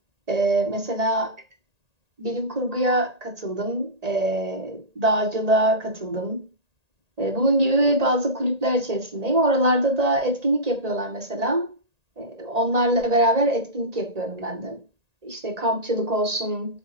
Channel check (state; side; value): late; left; 1.8 ms